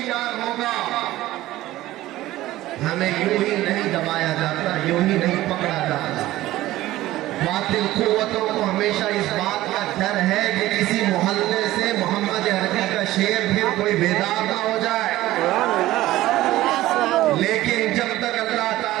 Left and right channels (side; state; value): left; quieter; 16.0 dB